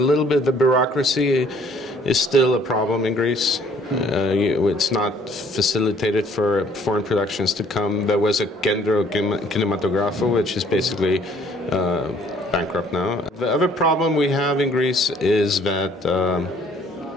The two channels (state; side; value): normal; both; correlation 0.59